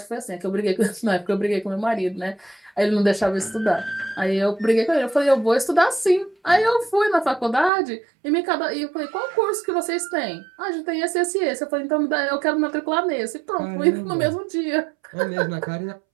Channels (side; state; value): left; drops out; at 7.7 s